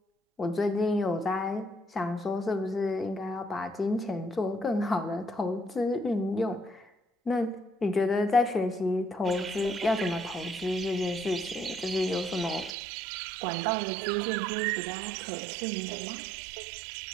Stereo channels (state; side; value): drops out; left; at 12.8 s